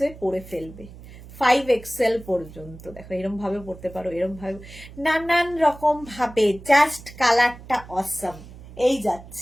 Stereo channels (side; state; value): right; noise; hum, 17 dB below the sound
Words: পরে ফেলবে। 5XL পর্যন্ত দেখো, এরকম ভাবে পড়তে পারো, এরকম ভাবে, নানান রকম ভাবে। জাস্ট কালারটা অসাম। এই